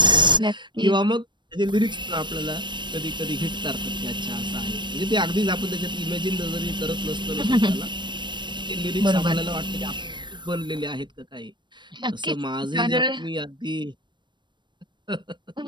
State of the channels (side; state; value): left; late; 0.22 ms